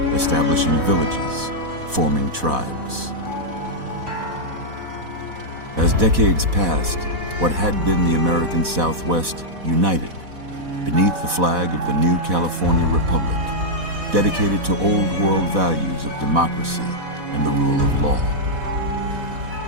establishing villages, forming tribes. As decades passed, what had been the American Southwest united beneath the flag of the new California Republic, dedicated to old world values of democracy and the rule of law.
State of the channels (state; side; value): late; left; 4.1 ms